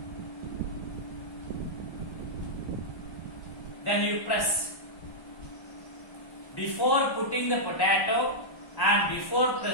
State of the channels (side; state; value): right; late; 1.1 ms